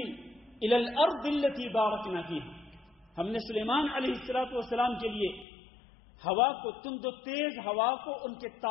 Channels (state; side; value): drops out; right; at 5.5 s